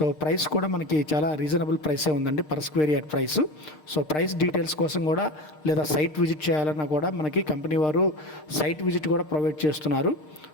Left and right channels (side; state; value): right; late; 6.6 ms